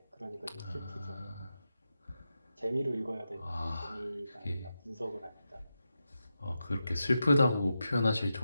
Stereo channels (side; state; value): both; inverted; correlation -0.89